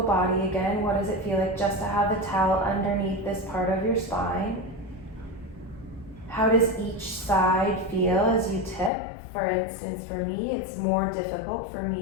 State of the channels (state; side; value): drops out; right; at 8.9 s